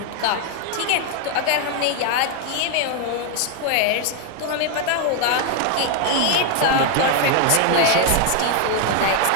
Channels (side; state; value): both; different; correlation 0.00